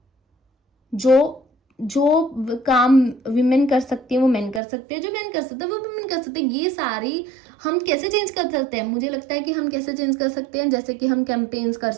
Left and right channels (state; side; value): drops out; left; at 4.6 s